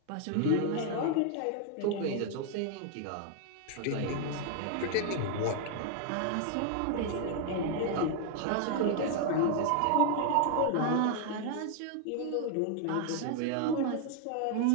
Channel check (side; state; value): both; different; correlation 0.00